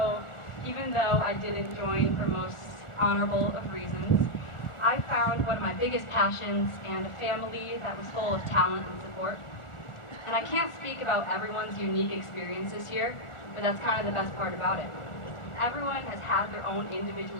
even though I didn't join for most honorable of reasons, I found one of my biggest passions and a family that was full of talent and support. And I can't speak about everyone's unique experiences here, but that's kind of the best part about it. Everyone has had their own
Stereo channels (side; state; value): right; late; 1.4 ms